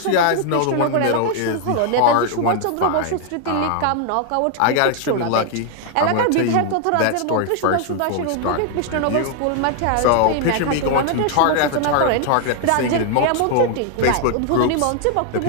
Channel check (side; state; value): both; different; correlation 0.00